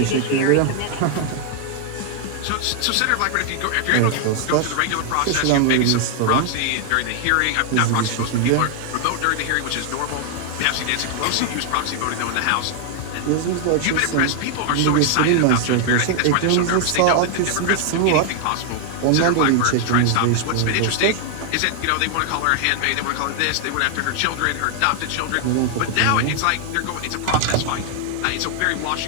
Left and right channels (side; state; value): both; different; correlation 0.00